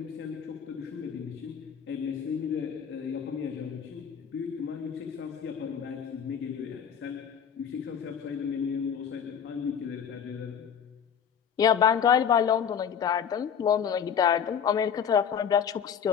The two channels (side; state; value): right; quieter; 7.8 dB